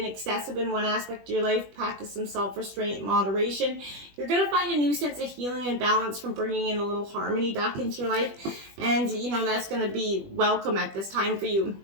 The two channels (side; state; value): left; late; 20 ms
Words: excessive in one aspect of your life, practice some self-restraint and moderation. You're going to find a new sense of healing and balance from bringing in a little harmony back into your life. And, you know, that's going to be welcome at this time for you.